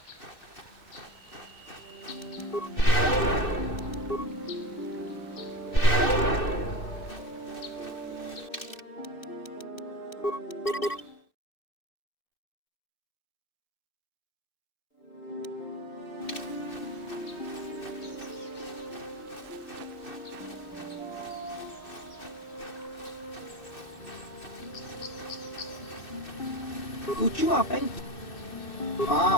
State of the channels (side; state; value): right; late; 2.6 ms